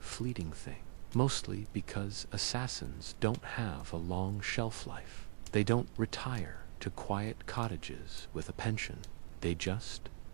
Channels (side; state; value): left; silent; digital silence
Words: thing, mostly because assassins don't have a long shelf life. They don't retire to quiet cottages with a pension. They just